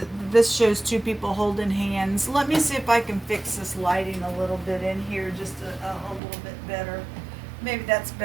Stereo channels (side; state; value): left; drops out; at 6.2 s